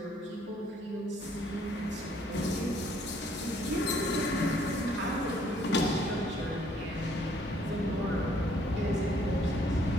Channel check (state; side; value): normal; both; correlation 0.64